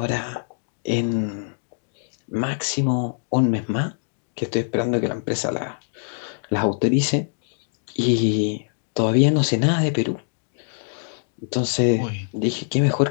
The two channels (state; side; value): silent; right; digital silence